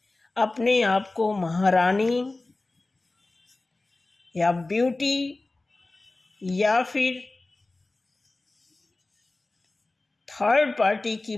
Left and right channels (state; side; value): quieter; right; 3.1 dB